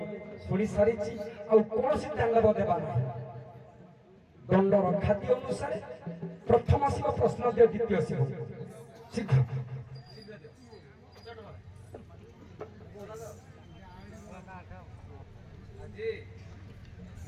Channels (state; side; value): identical; both; correlation 1.00